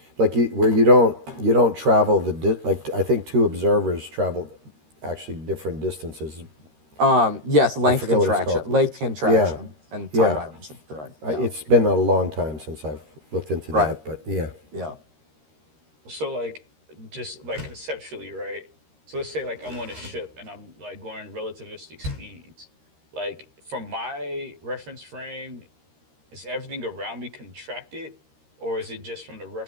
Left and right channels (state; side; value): late; left; 13 ms